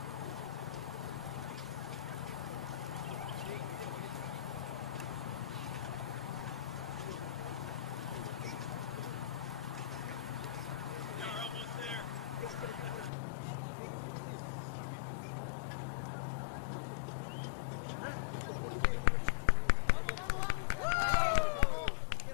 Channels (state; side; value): drops out; right; at 13.1 s